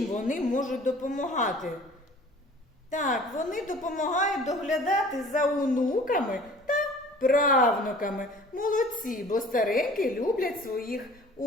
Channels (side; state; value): both; normal; correlation 0.48